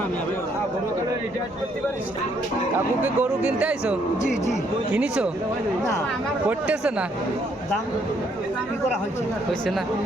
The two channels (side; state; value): both; normal; correlation 0.69